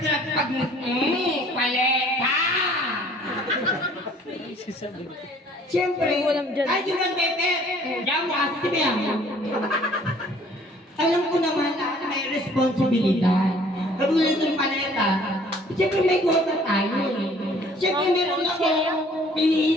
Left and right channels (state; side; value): normal; both; correlation 0.55